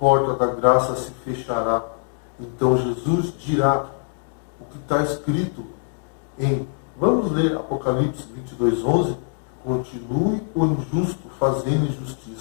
da graça se fechará. Então Jesus dirá o que está escrito vamos ler Apocalipse 22:11. Continue o injusto fazendo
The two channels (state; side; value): silent; right; digital silence